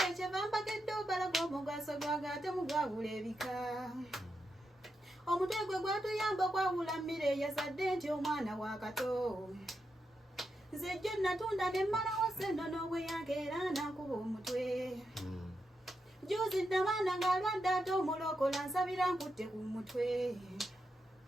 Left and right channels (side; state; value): both; normal; correlation 0.85